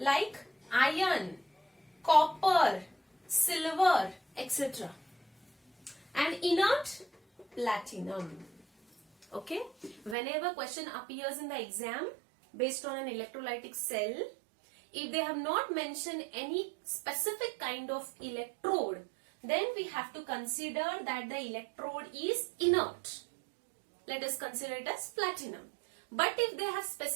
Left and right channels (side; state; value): left; drops out; at 10.2 s